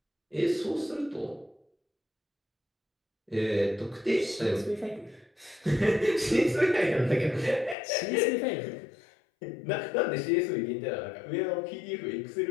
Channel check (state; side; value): drops out; right; at 7.8 s